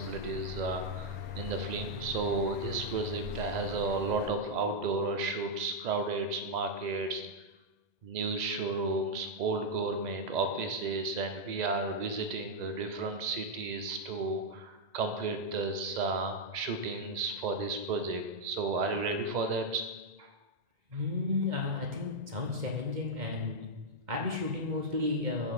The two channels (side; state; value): left; late; 2.0 ms